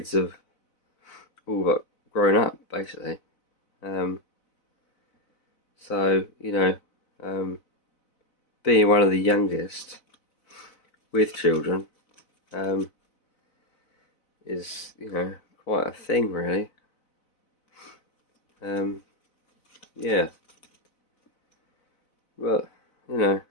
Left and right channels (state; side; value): late; right; 4.0 ms